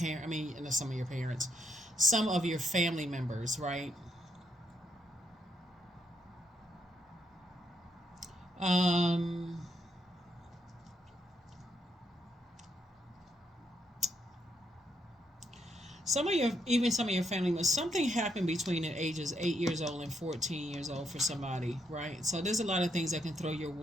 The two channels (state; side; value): normal; both; correlation 0.77